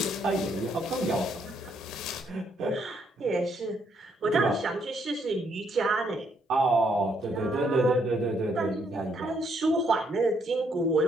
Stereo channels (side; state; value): both; normal; correlation 0.72